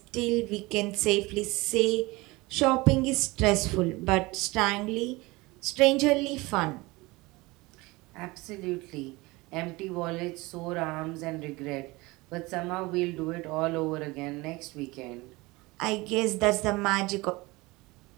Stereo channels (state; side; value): quieter; left; 22.5 dB